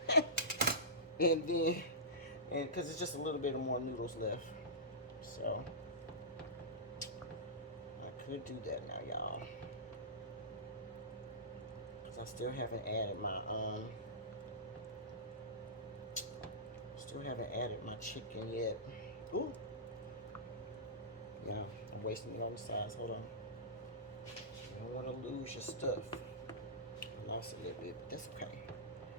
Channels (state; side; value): normal; both; correlation -0.19